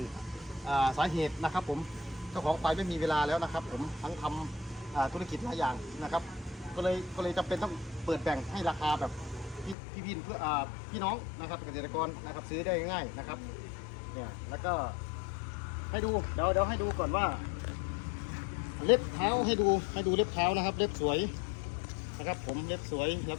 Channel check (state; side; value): drops out; right; at 9.8 s